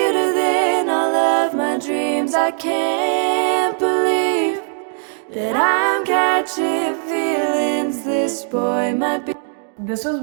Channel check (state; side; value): silent; left; digital silence